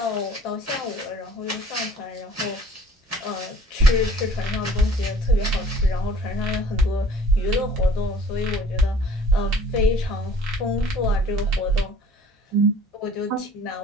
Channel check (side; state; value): both; normal; correlation 0.52